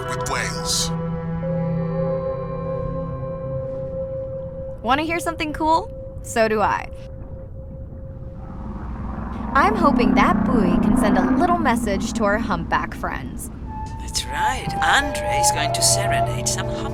with whales. Want to hear something cool? So do I. I'm hoping that buoy can send a little message to our humpback friends. That's right. Andre is going to serenade some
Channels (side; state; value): both; identical; correlation 1.00